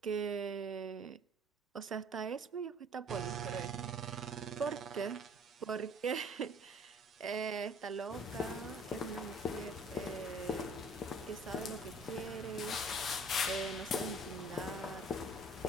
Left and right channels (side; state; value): both; normal; correlation 0.53